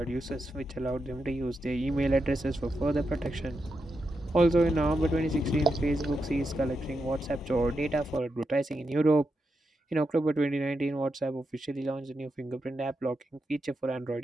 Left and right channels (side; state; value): both; normal; correlation 0.86